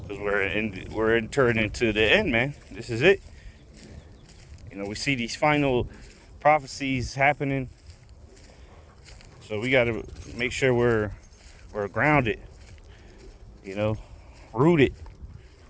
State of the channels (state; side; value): identical; both; correlation 1.00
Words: because we're entering into the end, man. This is it. You know, we see these final prophecies happening, so we got to make sure we're grounded, you know, rooted.